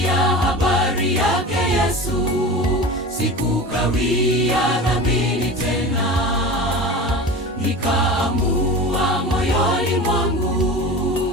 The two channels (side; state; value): both; normal; correlation 0.32